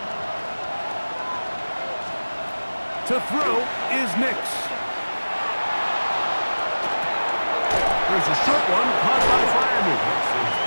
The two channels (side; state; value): both; inverted; correlation -1.00